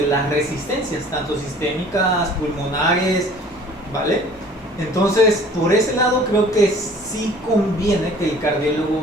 las resistencias, tanto sistémicas, pulmonares, ¿vale? Entonces, por ese lado creo que sí conviene que el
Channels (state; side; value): normal; both; correlation 0.50